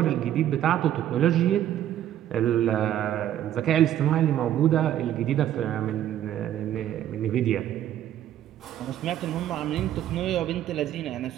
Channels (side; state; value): left; quieter; 11.6 dB